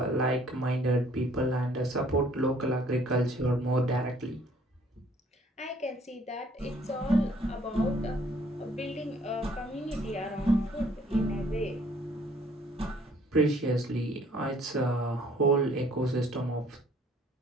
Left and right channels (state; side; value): normal; both; correlation 0.60